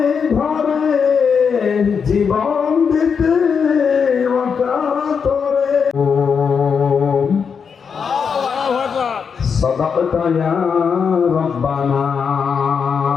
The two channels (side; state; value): right; quieter; 6.3 dB